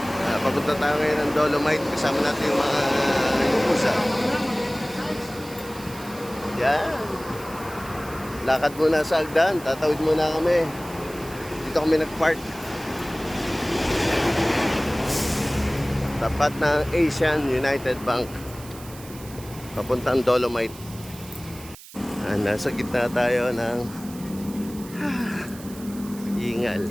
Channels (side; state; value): right; noise; hiss, 18 dB below the sound